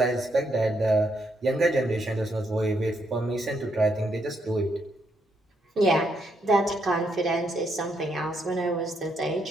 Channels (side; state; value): both; normal; correlation 0.77